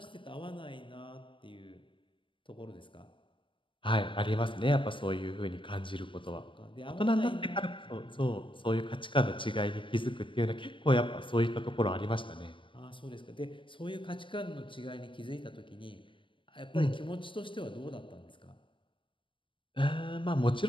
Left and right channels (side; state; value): right; late; 0.25 ms